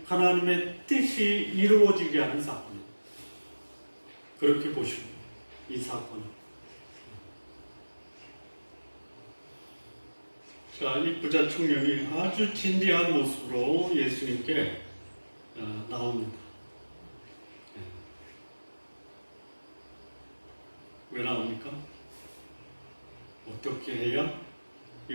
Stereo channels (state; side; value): inverted; both; correlation -1.00